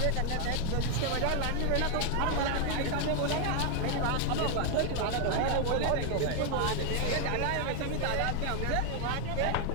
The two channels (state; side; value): different; both; correlation 0.00